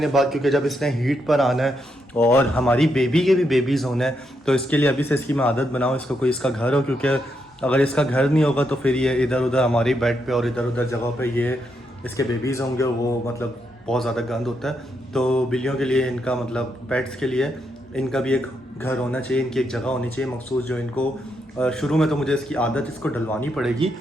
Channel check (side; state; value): both; normal; correlation 0.80